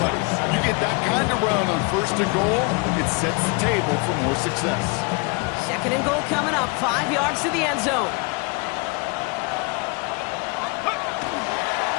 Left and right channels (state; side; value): quieter; right; 30.5 dB